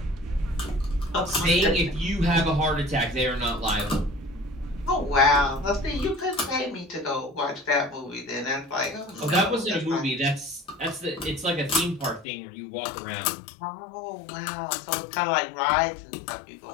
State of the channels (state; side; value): drops out; right; at 12.2 s